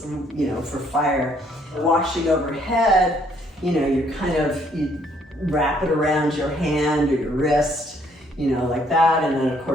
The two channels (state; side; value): normal; both; correlation 0.66